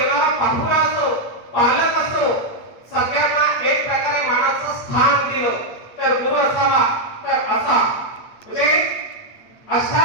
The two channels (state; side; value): late; right; 8.5 ms